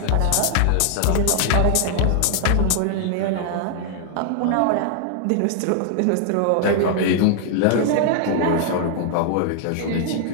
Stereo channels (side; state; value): both; different; correlation 0.00